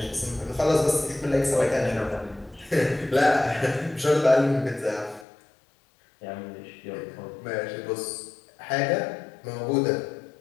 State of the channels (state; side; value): drops out; right; at 5.2 s